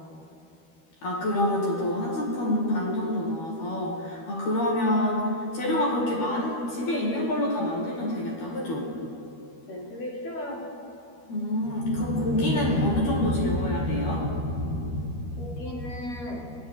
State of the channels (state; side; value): late; right; 12 ms